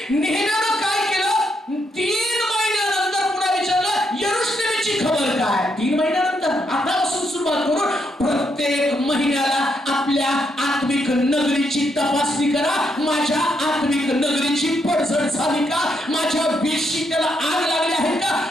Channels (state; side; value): normal; both; correlation 0.78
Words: नेहम्यानं काय केलं, 3 महिन्यानंतर पुन्हा विचारलं यरूशलेमेची खबर काय. 3 महिन्यानंतर आतापासून सुरुवात करून प्रत्येक महिन्याला आपल्या आत्मिक नगरीची तपासणी करा. माझ्या आत्मिक नगरीची पडझड झाली का, माझ्या वेशी त्याला आग लागली आहे का,